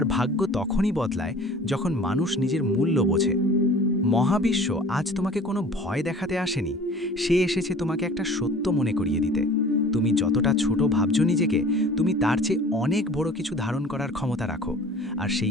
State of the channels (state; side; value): normal; both; correlation 0.45